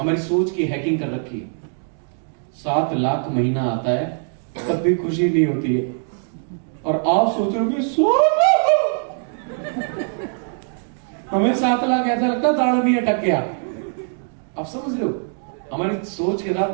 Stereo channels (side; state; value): left; silent; 64 dB below the other